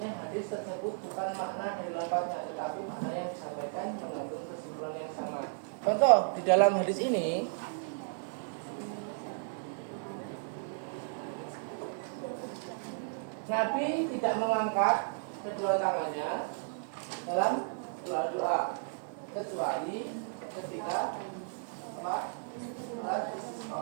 hadis tersebut bukan makna dari lafadznya, tetapi makna yang disampaikan mengandung kesimpulan yang sama. Contoh, di dalam hadis ini Nabi tidak mengangkat kedua tangannya dalam doa kecuali ketika apa? Salat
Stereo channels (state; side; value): silent; left; digital silence